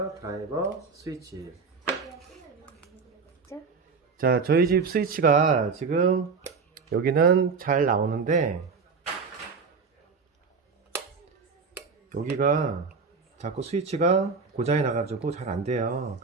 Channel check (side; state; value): left; quieter; 5.0 dB